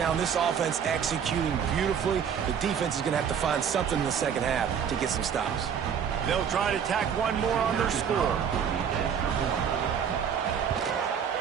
This offense executing beautifully. The defense is going to have to find something in the second half to get some stops. They'll try to tack one more on their score.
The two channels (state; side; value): quieter; left; 7.7 dB